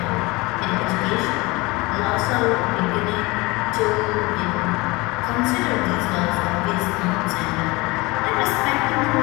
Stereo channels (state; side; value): quieter; right; 23.5 dB